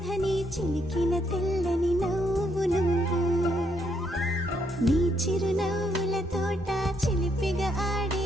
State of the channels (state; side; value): normal; both; correlation 0.74